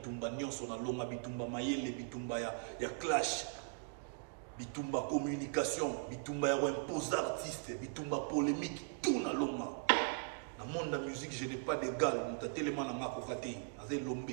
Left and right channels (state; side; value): quieter; left; 38.0 dB